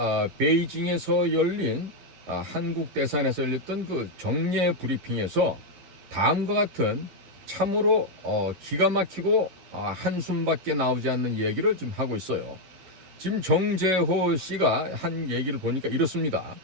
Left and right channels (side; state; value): left; late; 11 ms